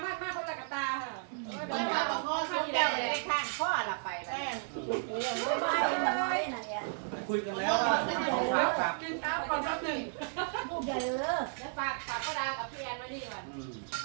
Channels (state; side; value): silent; left; digital silence